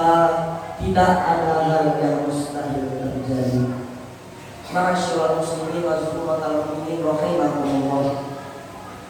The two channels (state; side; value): identical; both; correlation 1.00